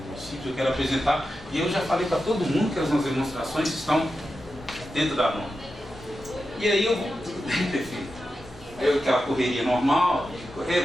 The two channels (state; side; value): normal; both; correlation 0.90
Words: eu quero apresentar, e eu já falei para todo mundo que as nossas demonstrações estão dentro da norma. E aí eu vou, tudo bem, prefeito. Aí aquela correria normal, de correr,